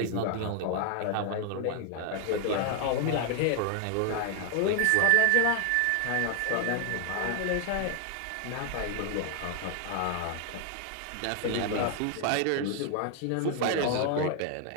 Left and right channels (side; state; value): both; different; correlation 0.01